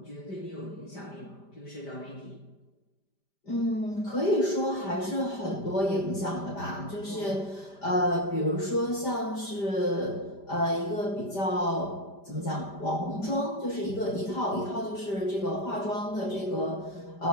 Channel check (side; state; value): right; late; 5.0 ms